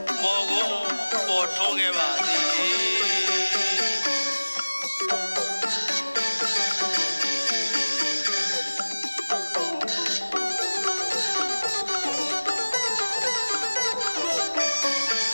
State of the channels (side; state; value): both; inverted; correlation -1.00